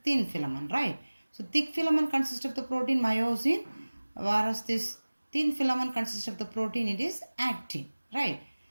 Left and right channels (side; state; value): both; inverted; correlation -1.00